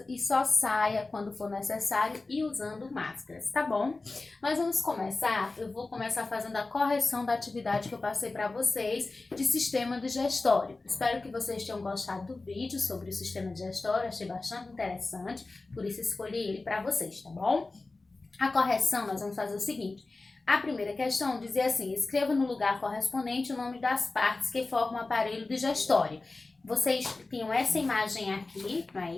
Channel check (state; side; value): quieter; right; 3.4 dB